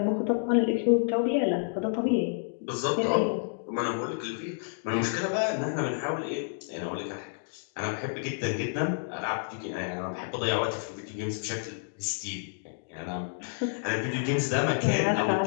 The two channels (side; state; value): right; silent; digital silence